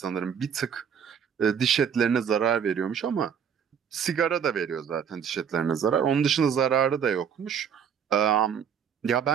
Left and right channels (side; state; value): left; quieter; 7.6 dB